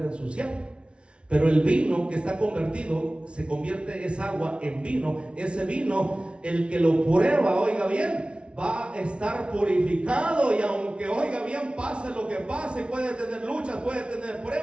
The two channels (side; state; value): left; late; 0.058 ms